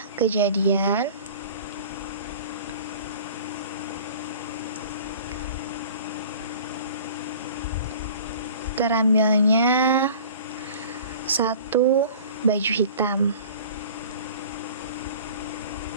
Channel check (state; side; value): inverted; both; correlation -0.44